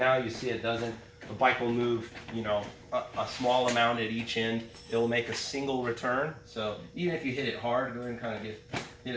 you see it doesn't. The bike will move, a small amount at each end. It will make a single return. So even if you hit it hard, go ahead and kind of hit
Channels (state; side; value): identical; both; correlation 1.00